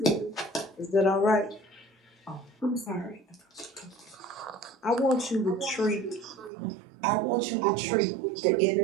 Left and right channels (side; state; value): left; drops out; at 6.5 s